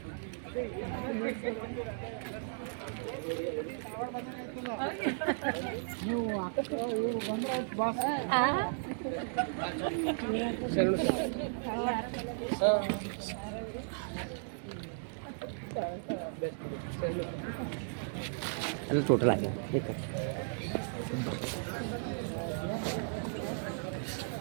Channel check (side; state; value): left; silent; digital silence